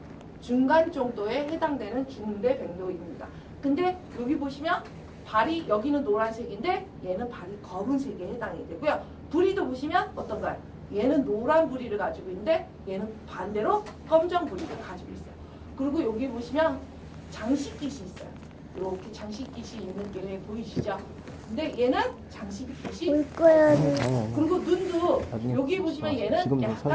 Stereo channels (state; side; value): identical; both; correlation 1.00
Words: 정도에 해당되는 중대백로입니다. 근데 여기 보시면 발이 여기는 노란색인데 얘는 발이 검은색에 해당이 되고요. 부리도 보시면 어떤가요? 얘는 노란 부리를 가지고 있는데 얘는 반대로 검정 부리를 가지고 있어요. 그리고 여기 보시면 장식깃이 있어요. 이렇게 장식깃이 있는 게 보이시죠? 근데 얘는 장식깃이 올 거야. 그리고 눈도 나중에 여기 보시면 얘는 지금도